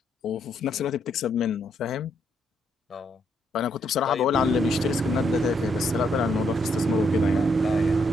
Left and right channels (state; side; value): normal; both; correlation 0.74